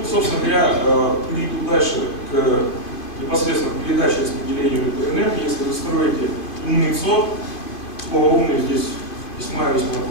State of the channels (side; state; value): right; late; 2.5 ms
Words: собственно говоря, перейду дальше непосредственно к передаче и распределению электроэнергии. Если вы строите умный ЦОД, слово «умный» здесь весьма